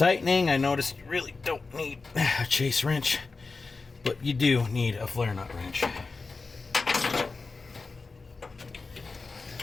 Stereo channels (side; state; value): right; quieter; 4.1 dB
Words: I noticed you really don't need a chase wrench, but you do need a flare nut wrench.